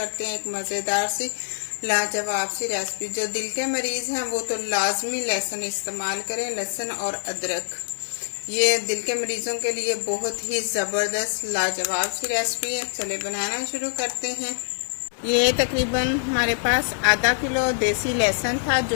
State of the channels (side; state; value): right; silent; digital silence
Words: हैं एक मज़ेदार सी लाजवाब सी रेसिपी। जो दिल के मरीज हैं वो तो लाजमी लहसुन इस्तेमाल करें, लहसुन और अदरक। ये दिल के मरीजों के लिए बहुत ही ज़बरदस्त लाजवाब सी रेसिपी है। चले बनाना शुरू करते हैं। ये तकरीबन हमारे पास आधा किलो देसी लहसुन था